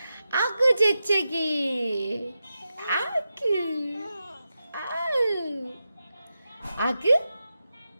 아그 재채기. 아그. 아으. 아그?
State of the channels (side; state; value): both; inverted; correlation -0.90